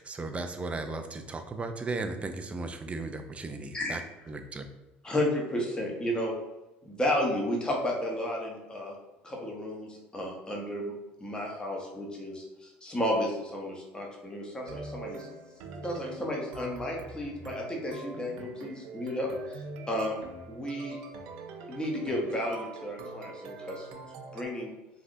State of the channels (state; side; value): normal; both; correlation 0.54